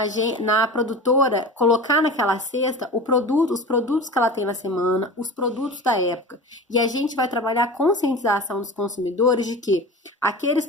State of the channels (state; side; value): normal; both; correlation 0.32